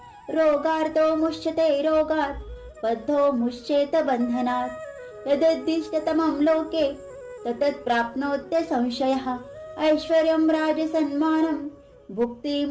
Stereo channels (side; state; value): both; identical; correlation 1.00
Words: रोगार्तो मुच्यते रोगात् बद्धो मुच्येत बन्धनात् यदुद्दिष्टतमं लोके ततत् प्राप्नोत्य संशयः ऐश्वर्यं राजसन्मानं